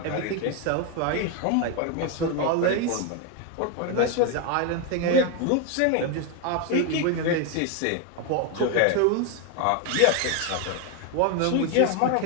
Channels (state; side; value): different; both; correlation 0.01